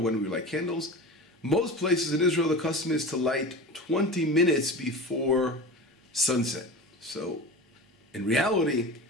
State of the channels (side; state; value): both; normal; correlation 0.31